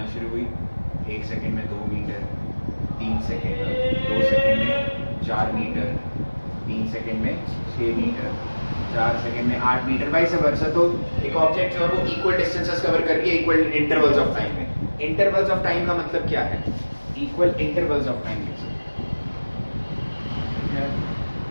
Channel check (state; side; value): inverted; both; correlation -1.00